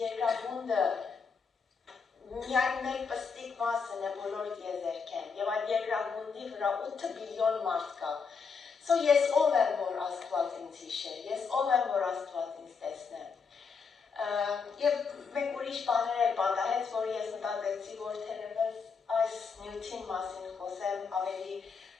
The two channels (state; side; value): quieter; right; 5.5 dB